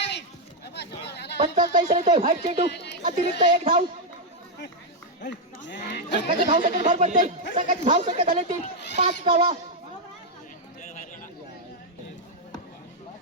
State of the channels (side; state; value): both; normal; correlation 0.00